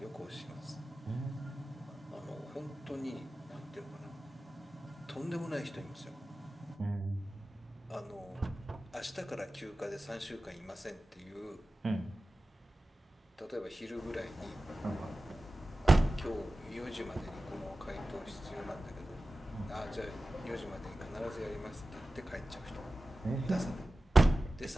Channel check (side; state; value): both; normal; correlation 0.95